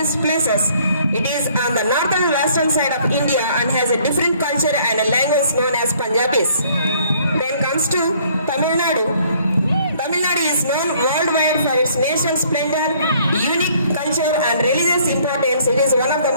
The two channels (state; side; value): inverted; both; correlation -0.61